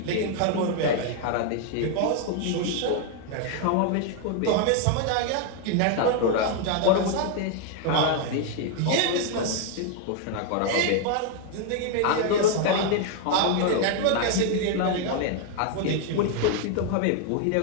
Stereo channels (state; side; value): different; both; correlation 0.01